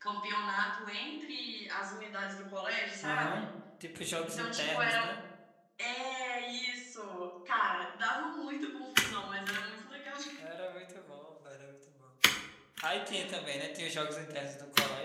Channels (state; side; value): identical; both; correlation 1.00